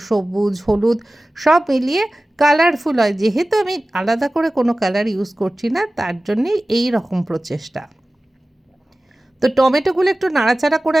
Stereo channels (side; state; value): both; normal; correlation 0.97